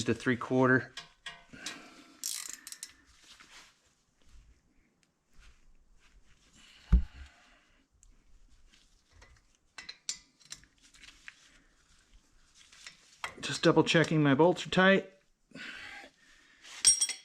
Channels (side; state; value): both; identical; correlation 1.00